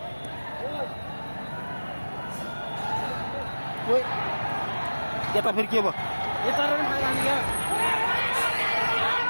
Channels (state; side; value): inverted; both; correlation -1.00